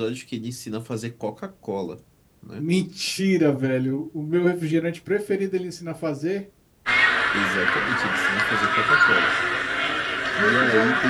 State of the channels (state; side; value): identical; both; correlation 1.00